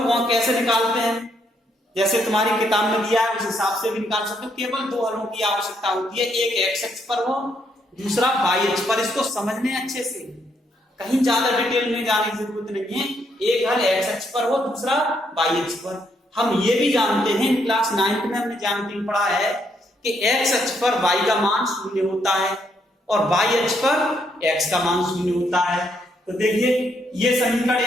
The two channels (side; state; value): both; normal; correlation 0.74